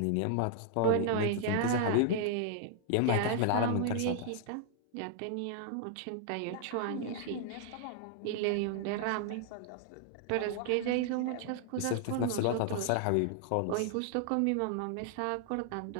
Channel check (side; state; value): both; different; correlation -0.01